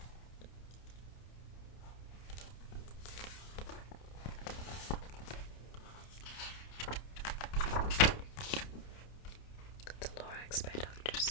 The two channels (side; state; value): right; late; 29 ms